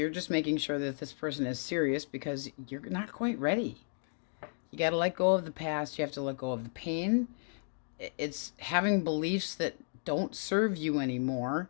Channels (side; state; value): right; silent; digital silence